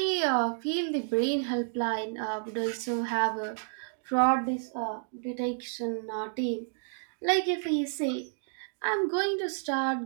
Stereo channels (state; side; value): silent; left; digital silence